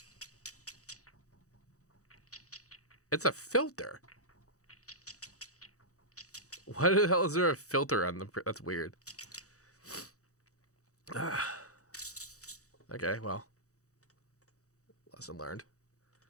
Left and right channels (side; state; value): right; late; 0.65 ms